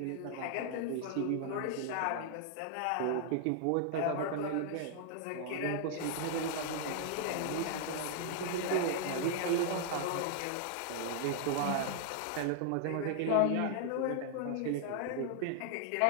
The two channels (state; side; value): different; both; correlation 0.00